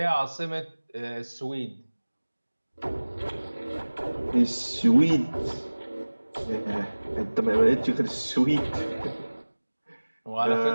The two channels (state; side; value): inverted; both; correlation -1.00